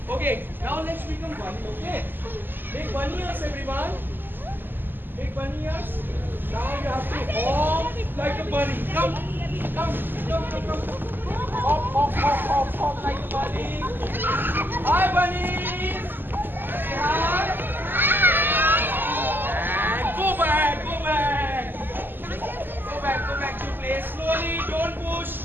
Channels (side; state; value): left; late; 0.094 ms